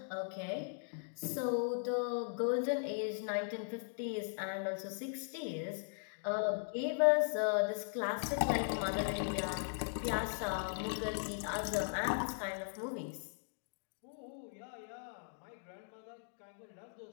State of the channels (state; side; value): silent; right; digital silence